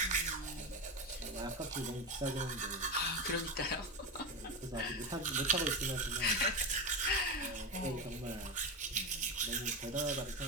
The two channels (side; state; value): both; normal; correlation 0.17